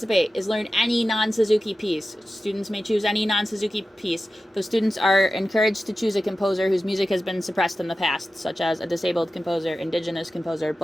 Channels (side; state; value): both; normal; correlation 0.93